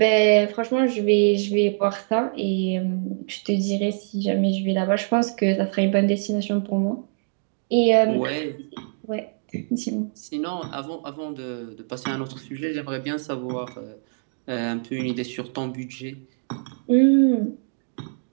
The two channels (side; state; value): left; silent; digital silence